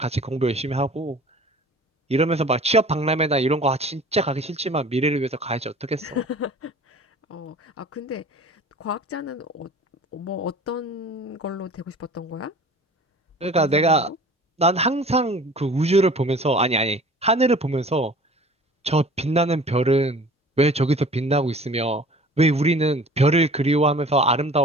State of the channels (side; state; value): both; normal; correlation 0.45